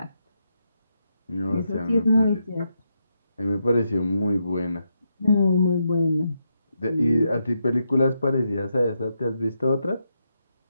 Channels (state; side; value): inverted; both; correlation -0.82